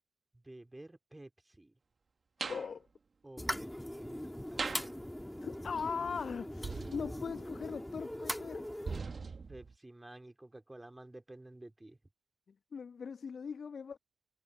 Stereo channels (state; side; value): normal; both; correlation 0.91